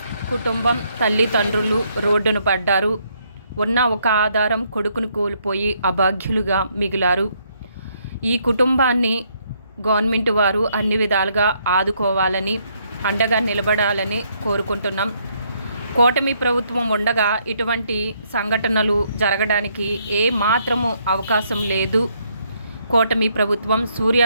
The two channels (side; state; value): both; inverted; correlation -0.72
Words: కుటుంబం తల్లిదండ్రులు రోడ్డును పడ్డారు. ఉన్న ఒక ఆధారం కొడుకును కోల్పోయి అభాగ్యులుగా మిగిలారు. ఈ కుటుంబాన్ని గవర్నమెంట్ వారు అన్ని విధాలుగా ఆదుకోవాలని, అండగా నిలబడాలని కోరుకుంటున్నాం. కూటమి ప్రభుత్వం ఉండగా ఇటువంటి సంఘటనలు జరగడానికి ఏ మాత్రము అవకాశం లేదు. కూటమి ప్రభుత్వం